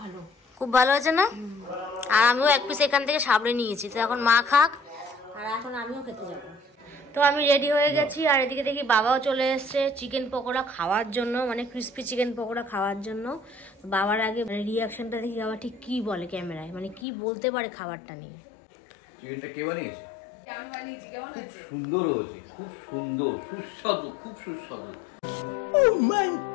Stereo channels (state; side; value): drops out; right; at 17.1 s